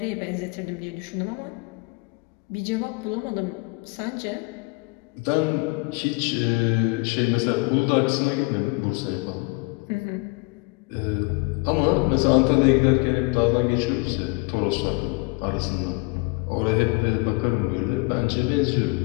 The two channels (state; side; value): quieter; right; 28.5 dB